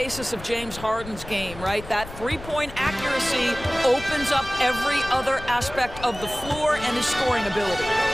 of James Harden's game, right? That three-point accuracy opens up every other aspect of the floor and his scoring ability.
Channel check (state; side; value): noise; left; rumble, 14 dB below the sound